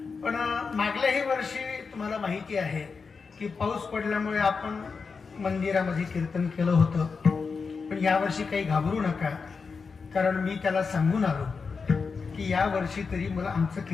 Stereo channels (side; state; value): right; quieter; 5.1 dB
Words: पण मागल्याही वर्षी तुम्हाला माहिती आहे की पाऊस पडल्यामुळे आपण मंदिरामध्ये कीर्तन केलं होतं पण यावर्षी काही घाबरू नका कारण मी त्याला सांगून आलो की या वर्षी तरी मला आमचं